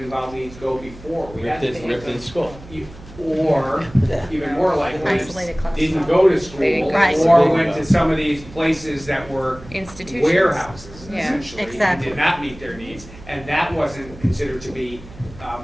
needs go before? We had to take Ripped in them- school. Or, even more likely, Isolated classes. didn't go to school, Right. or went to some of these places that were Institutions. warehouses, Yeah, essentially, and exactly. did not meet their needs, and that wasn't considered to be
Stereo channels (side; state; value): right; noise; hum, 18 dB below the sound